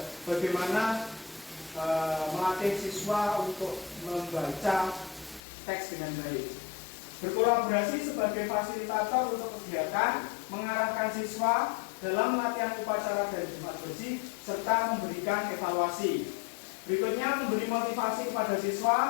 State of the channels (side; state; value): right; drops out; at 5.4 s